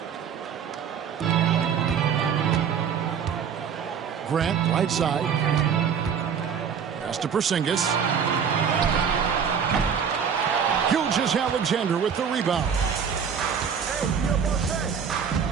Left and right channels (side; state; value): left; quieter; 7.2 dB